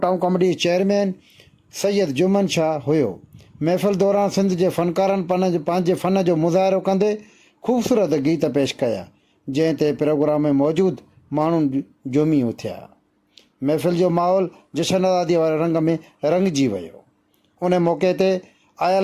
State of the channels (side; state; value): both; identical; correlation 1.00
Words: town committee chairman Syed Juman Shah हुयो। महफ़िल दौरान सिंध जे फ़नकारनि पंहिंजे फ़न जो मुज़ाहिरो कंदे ख़ूबसूरत गीत पेश कया, जंहिं ते प्रोग्राम में मौजूदु माण्हू झूमी उथिया। महफ़िल जो माहौल जशन आज़ादीअ वारे रंग में रंगिजी वियो। उन मौक़े ते